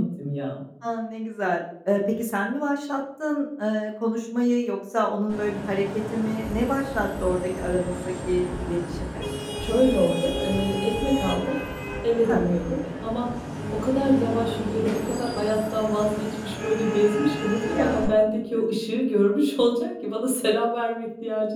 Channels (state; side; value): identical; both; correlation 1.00